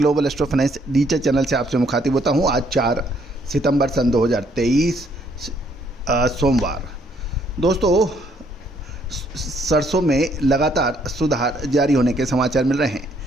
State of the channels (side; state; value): both; normal; correlation 0.68